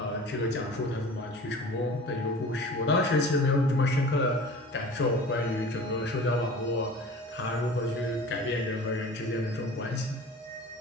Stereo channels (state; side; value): normal; both; correlation 0.40